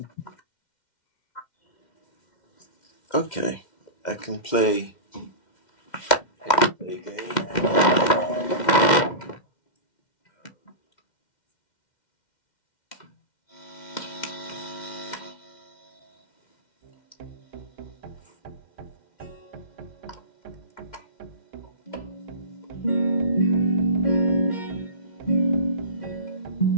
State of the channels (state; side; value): late; right; 2.1 ms